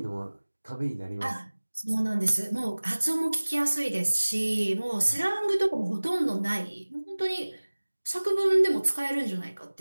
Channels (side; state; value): both; inverted; correlation -1.00